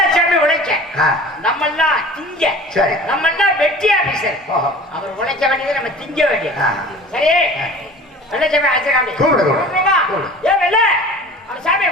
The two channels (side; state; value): both; normal; correlation 0.42